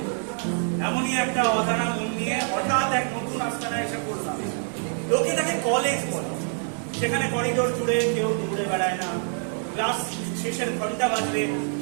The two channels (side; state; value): left; silent; 56 dB below the other